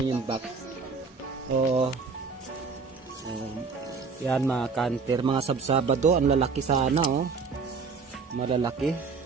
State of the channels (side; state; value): left; quieter; 4.9 dB